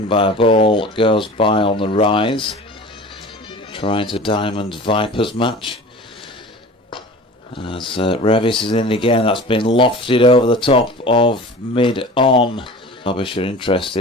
by a ball that goes by on the rise. Trying to Diamond Vipers match. As Revis is in again, that's been lofted over the top of mid-on. Derbyshire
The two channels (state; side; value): normal; both; correlation 0.38